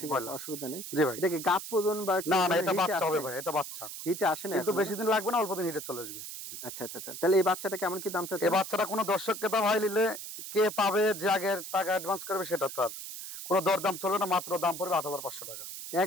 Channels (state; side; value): noise; right; hiss, 9 dB below the sound